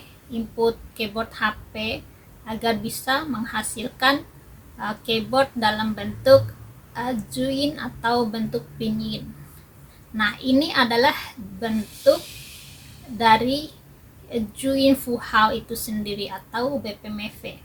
input keyboard HP agar bisa menghasilkan keyboard dalam bentuk Juin atau bentuk Pinyin. Nah, ini adalah bentuk dari Juin Fuhao itu sendiri atau BPMV.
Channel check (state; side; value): identical; both; correlation 1.00